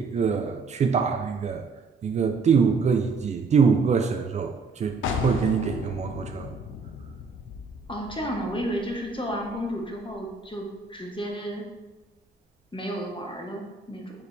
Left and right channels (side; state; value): left; quieter; 4.3 dB